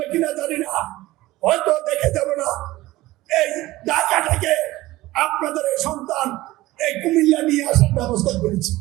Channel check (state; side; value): quieter; left; 17.7 dB